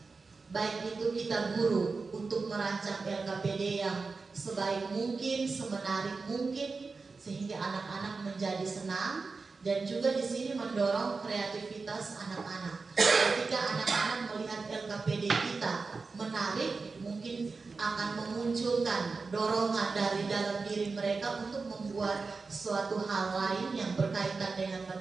Baik itu kita guru untuk merancang LKPD yang sebaik mungkin, semenarik mungkin, sehingga anak-anak menjadi senang, dan juga di sini mendorong kreativitas anak-anak. Ketika anak-anak melihat LKPD kita menarik, mungkin akan memunculkan dorongan dari dalam diri mereka untuk membuat suatu hal lain yang berkaitan dengan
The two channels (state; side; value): quieter; left; 4.3 dB